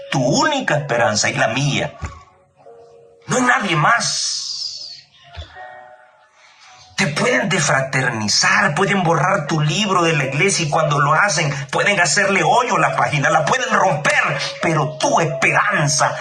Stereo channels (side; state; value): both; identical; correlation 1.00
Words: tu única esperanza y la mía. No hay nadie más. Te pueden defraternizar, pueden borrar tu libro de la iglesia y cuando lo hacen pueden hacerle hoyo a la página, la pueden romper, pero tu esperanza